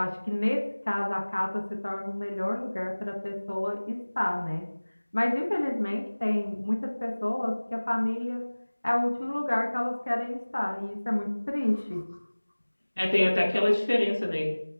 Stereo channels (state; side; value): inverted; both; correlation -1.00